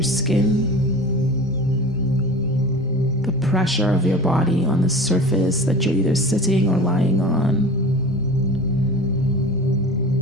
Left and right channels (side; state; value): both; normal; correlation 0.36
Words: skin, the pressure of your body on the surface that you're either sitting or lying on.